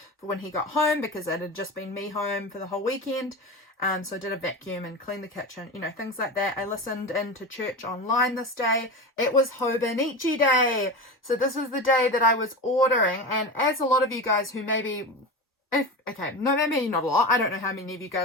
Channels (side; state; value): both; normal; correlation 0.25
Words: for when he got home, because it had just been me home for the whole weekend. So I did a vacuum and cleaned the kitchen, you know, things like that. I listened into church online this day. It was Hobonichi Day. So this was the day that I was ordering. And as a lot of you guys who maybe, maybe not a lot. I don't know how many of you